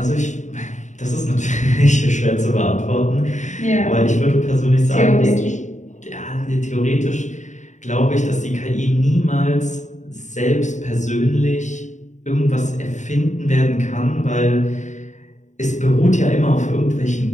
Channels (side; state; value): right; late; 0.35 ms